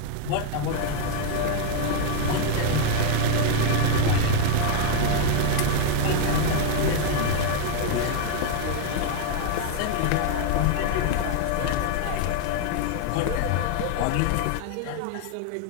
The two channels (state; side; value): different; both; correlation 0.00